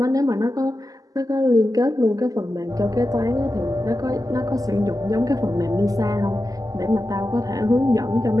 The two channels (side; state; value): left; late; 0.17 ms